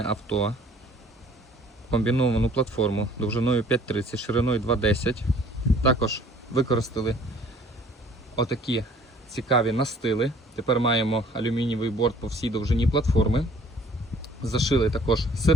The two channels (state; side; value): normal; both; correlation 0.55